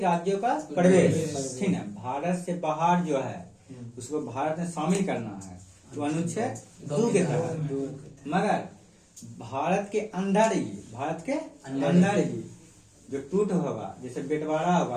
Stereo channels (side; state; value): both; identical; correlation 1.00